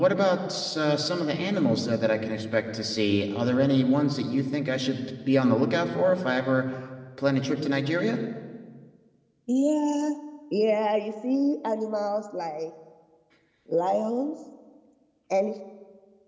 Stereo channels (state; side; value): identical; both; correlation 1.00